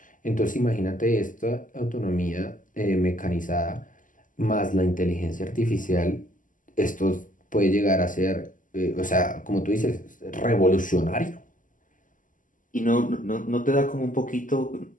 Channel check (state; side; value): late; right; 0.38 ms